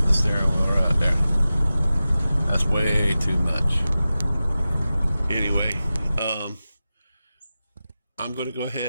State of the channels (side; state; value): both; inverted; correlation -0.94